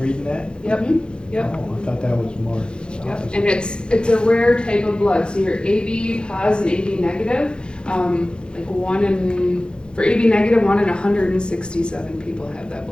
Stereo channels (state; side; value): late; right; 0.051 ms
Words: that? Yep. Yep. Oh, I thought that was more. Yep. And it's a rare type of blood. So you're AB positive and AB negative. For AB negative, 1 in 167 people have that